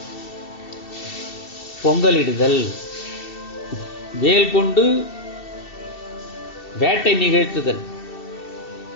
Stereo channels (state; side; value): late; right; 2.7 ms